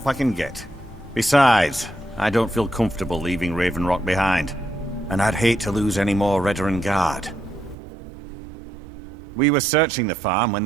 I can get. Besides, I don't feel comfortable leaving Raven Rock behind, and I'd hate to lose any more Redoran Guard. We were searching the farm when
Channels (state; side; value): drops out; left; at 7.8 s